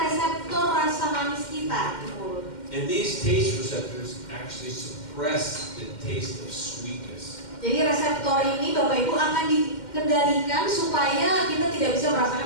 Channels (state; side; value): late; right; 2.1 ms